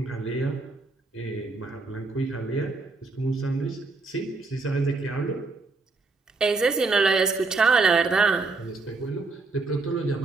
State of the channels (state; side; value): quieter; left; 3.9 dB